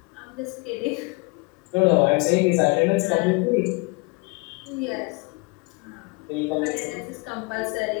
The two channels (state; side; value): quieter; right; 28.1 dB